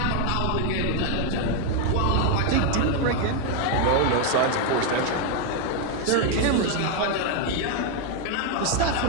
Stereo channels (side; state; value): both; different; correlation 0.01